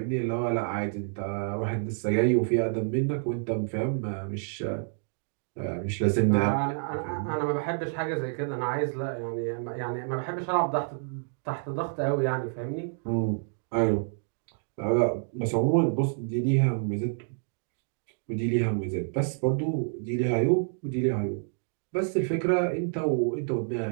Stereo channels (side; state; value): left; silent; digital silence